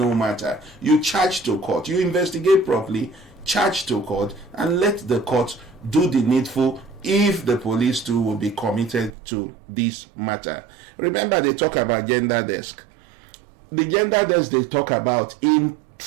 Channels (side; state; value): left; drops out; at 9.1 s